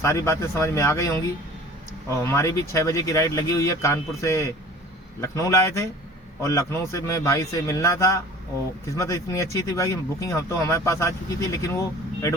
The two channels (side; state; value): both; normal; correlation 0.45